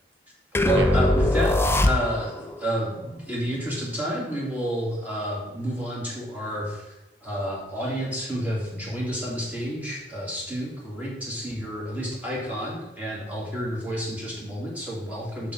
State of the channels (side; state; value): both; normal; correlation 0.68